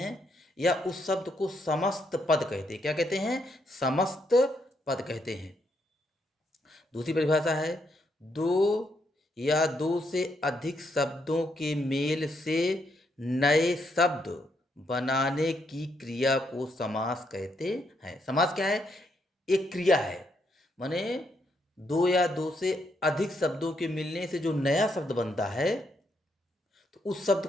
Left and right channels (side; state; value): both; normal; correlation 0.76